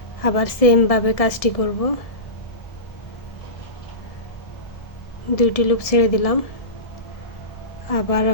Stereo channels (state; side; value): late; right; 1.7 ms